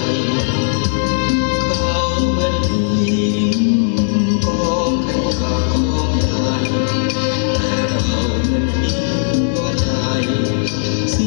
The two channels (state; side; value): silent; right; digital silence